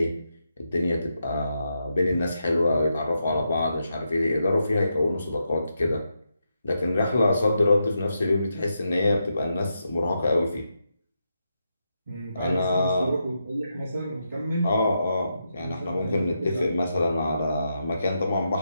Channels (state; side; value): inverted; both; correlation -0.84